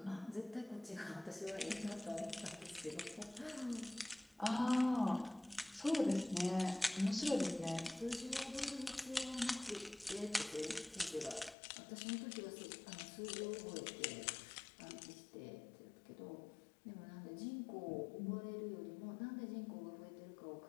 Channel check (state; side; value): drops out; right; at 11.6 s